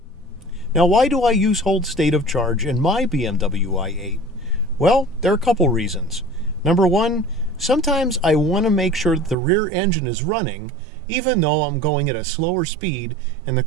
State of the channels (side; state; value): left; drops out; at 9.3 s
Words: Now, why do I use hold state of charge in my BMW i8? Well, there are a couple reasons. Number one, sometimes I want to make sure that the rear engine is running, even though I'm going at a slower speed and the